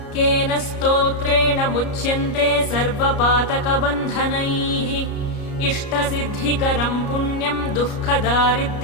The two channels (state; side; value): late; right; 33 ms